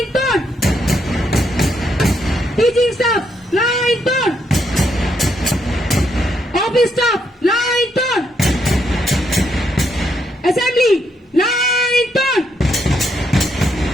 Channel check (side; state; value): both; normal; correlation 0.76